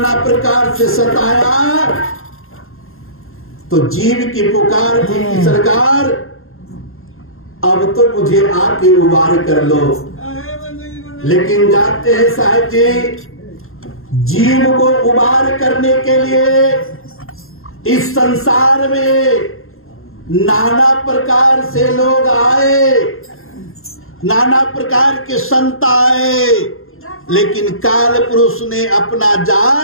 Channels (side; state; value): right; late; 0.61 ms